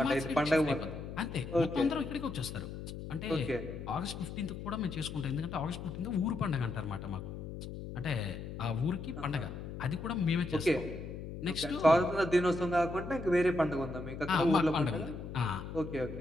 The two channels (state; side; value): noise; left; hum, 9 dB below the sound